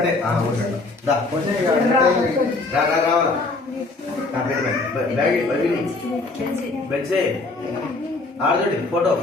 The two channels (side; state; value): right; quieter; 3.4 dB